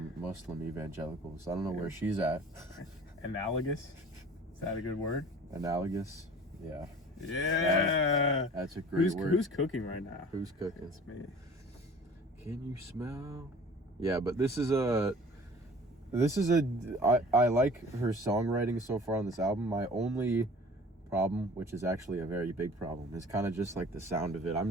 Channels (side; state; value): both; normal; correlation 0.45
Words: Muslim evangelicals. I don't know where she's at. Analogous? Is that a good word? Analogous. Yeah. Yeah. That's a great word. Who's cooking right now? Who's cooking? It's me. Can you smell? Yeah, but this is a I like her songwriting so far on this album. My only problem, which is actually a very big problem, is kind of just like the sound of it. I'm